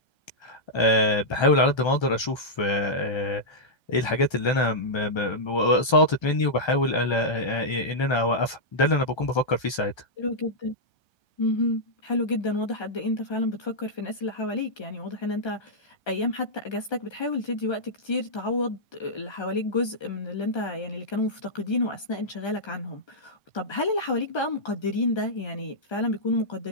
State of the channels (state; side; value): late; right; 1.3 ms